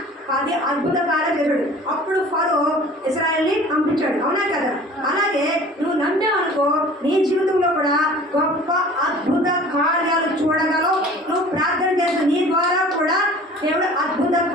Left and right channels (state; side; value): normal; both; correlation 0.45